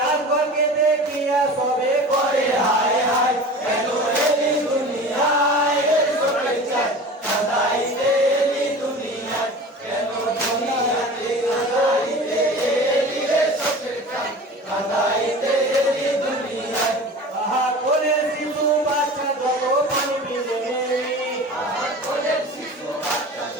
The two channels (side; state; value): both; normal; correlation 0.37